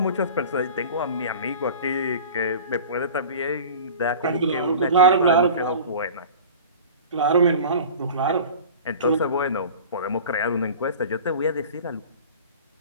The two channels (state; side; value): inverted; both; correlation -0.39